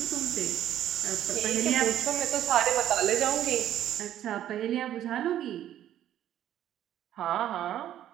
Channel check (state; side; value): quieter; left; 11.6 dB